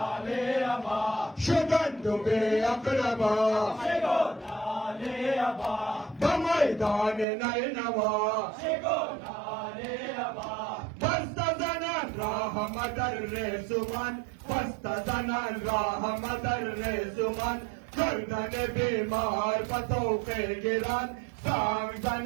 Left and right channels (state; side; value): drops out; left; at 7.2 s